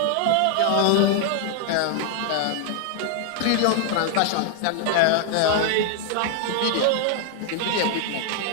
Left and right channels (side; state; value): both; different; correlation 0.00